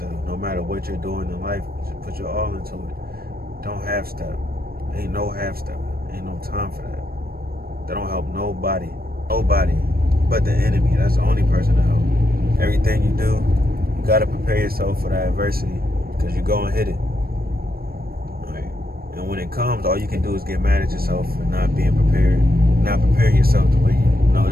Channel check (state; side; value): late; left; 0.44 ms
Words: no matter what you're doing in life, just put your all into it. Don't half step. Ain't no half step. Ain't no time for that. That don't help nobody but the enemy. That's the only person to help. Everything you do, you gotta prepare yourself for that adversity, because you're gonna hit it. And when it comes, all you can do is get mad at yourself for not being prepared, not preparing yourself the way you know